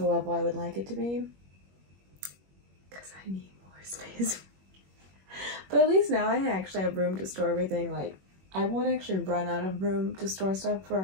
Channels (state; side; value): late; left; 21 ms